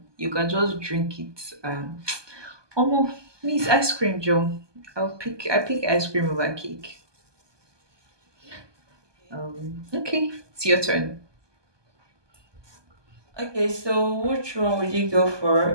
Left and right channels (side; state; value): left; late; 1.2 ms